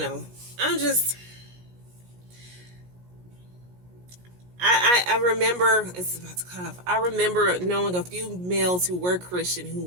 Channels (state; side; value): late; left; 17 ms